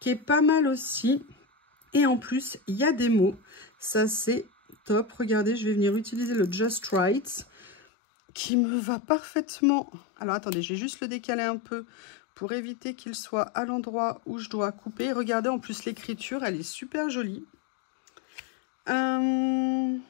est pas mal aussi. Et en plus, il y a des mots. Ça, c'est top. Regardez, je vais venir utiliser le Just Right qui me va parfaitement. Alors, attendez, je vais juste le décaler un peu pour éviter qu'il soit à l'endroit où je dois couper. Regardez, en plus, l'écriture, elle est super jolie.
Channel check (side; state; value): right; drops out; at 7.8 s